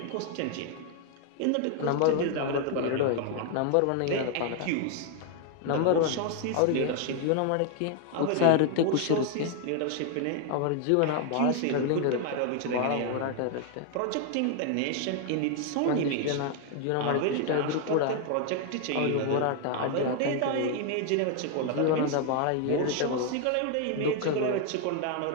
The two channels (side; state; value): both; different; correlation 0.00